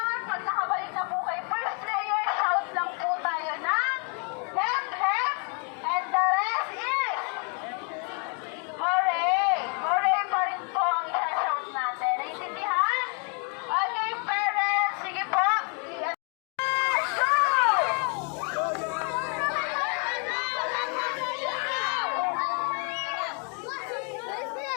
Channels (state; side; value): quieter; right; 38.6 dB